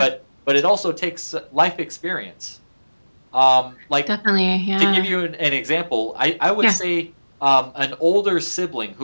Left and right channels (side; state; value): both; inverted; correlation -1.00